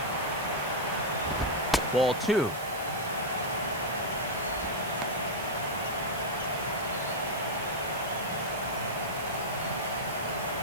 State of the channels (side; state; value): right; noise; hiss, 13 dB below the sound